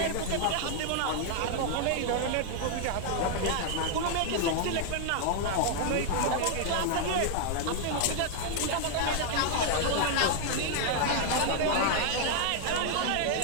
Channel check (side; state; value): both; different; correlation 0.00